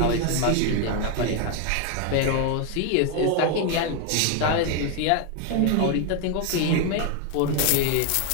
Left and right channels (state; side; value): different; both; correlation 0.01